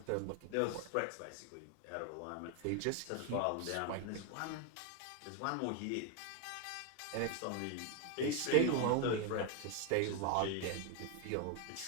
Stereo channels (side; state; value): both; different; correlation 0.01